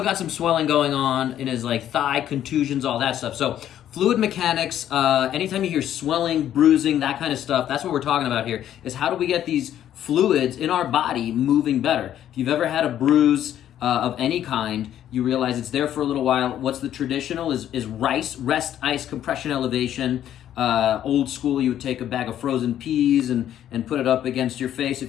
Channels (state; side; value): quieter; right; 11.1 dB